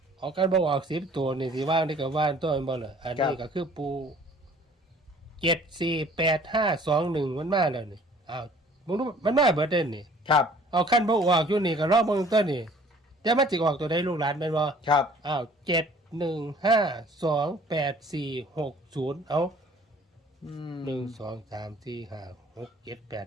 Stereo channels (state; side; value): normal; both; correlation 0.54